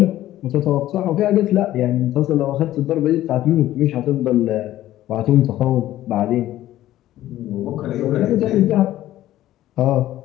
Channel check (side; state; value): right; quieter; 14.0 dB